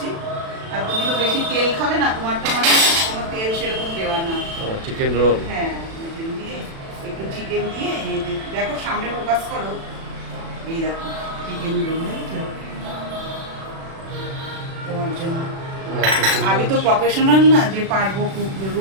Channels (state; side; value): late; left; 36 ms